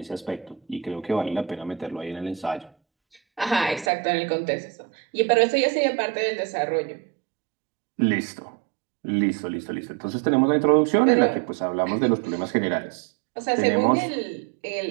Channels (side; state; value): left; drops out; at 3.9 s